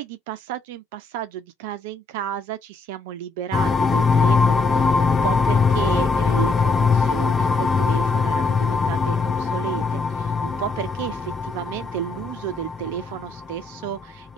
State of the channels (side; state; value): right; quieter; 3.4 dB